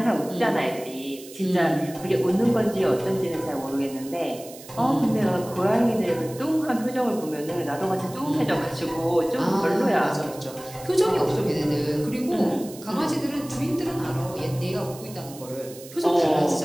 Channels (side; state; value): right; noise; hiss, 17 dB below the sound